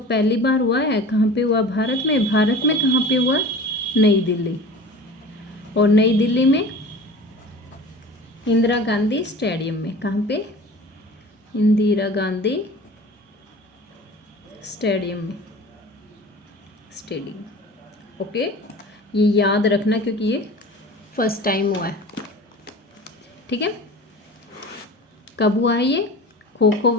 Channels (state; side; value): normal; both; correlation 0.39